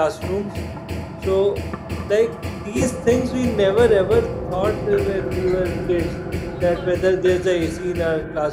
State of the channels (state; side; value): identical; both; correlation 1.00